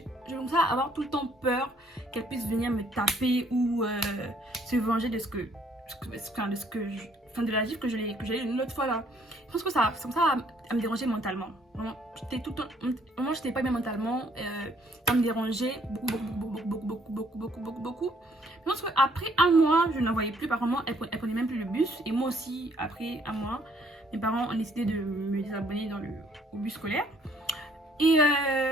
commence à avoir tout le temps peur qu'elle puisse venir me taper ou se venger de de la gifle que j'ai eu une autre fois là. Je pense que ça à me déranger mentalement. Vraiment, j'étais pas bien mentalement. Ça me dérangeait beaucoup. Je pense qu'après un mois, je n'en voyais plus. Apparemment, elle prenait même plus le bus. Et moi aussi, après un mois, mes parents ont décidé de me désabonner au bus scolaire. Et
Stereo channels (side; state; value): both; normal; correlation 0.64